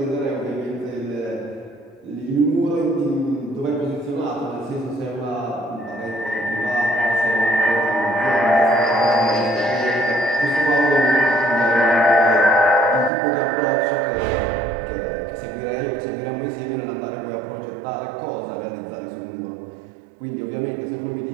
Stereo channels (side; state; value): left; drops out; at 13.1 s